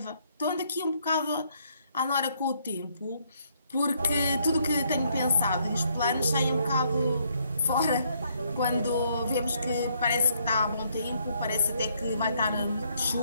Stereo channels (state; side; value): inverted; both; correlation -0.70